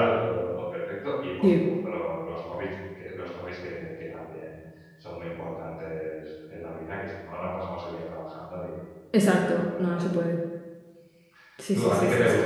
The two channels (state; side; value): identical; both; correlation 1.00